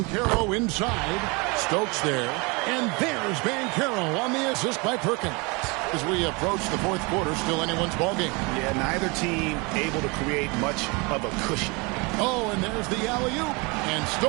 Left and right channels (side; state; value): left; quieter; 28.4 dB